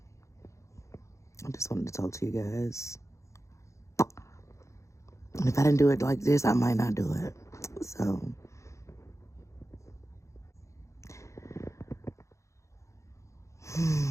I just wanted to talk to you guys. And if I didn't do it like this, I might not do it. So,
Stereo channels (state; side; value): late; right; 0.15 ms